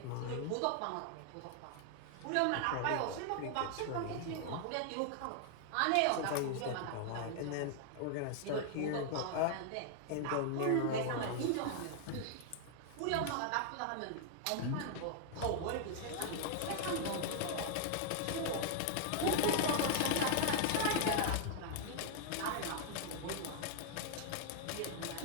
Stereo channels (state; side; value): different; both; correlation 0.00